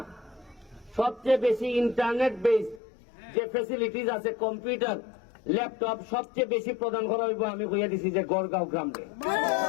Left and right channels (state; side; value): drops out; right; at 2.8 s